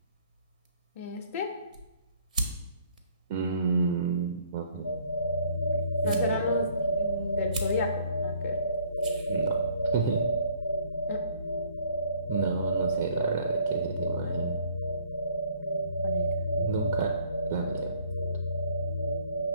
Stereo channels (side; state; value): both; inverted; correlation -0.60